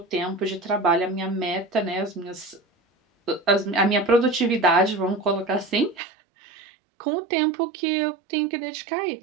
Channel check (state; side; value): drops out; left; at 6.0 s